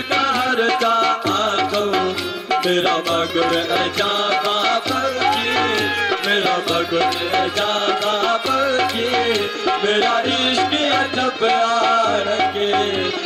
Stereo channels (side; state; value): both; identical; correlation 1.00